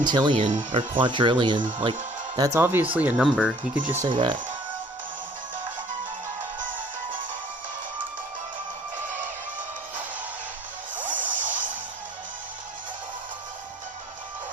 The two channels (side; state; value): both; normal; correlation 0.56